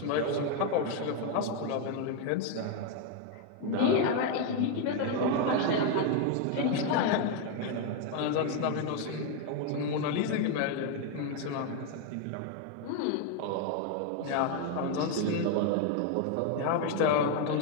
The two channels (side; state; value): both; different; correlation 0.01